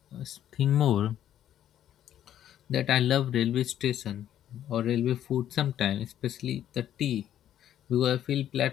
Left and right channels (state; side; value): quieter; right; 11.1 dB